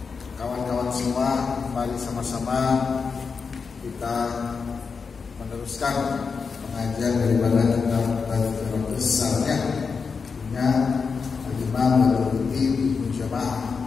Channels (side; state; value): right; quieter; 5.3 dB